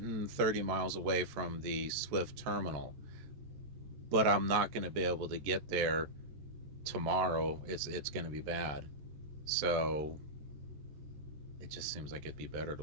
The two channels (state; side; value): late; left; 14 ms